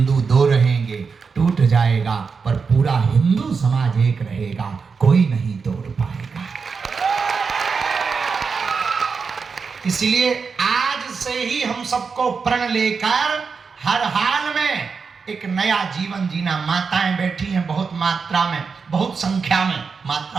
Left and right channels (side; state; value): left; quieter; 5.3 dB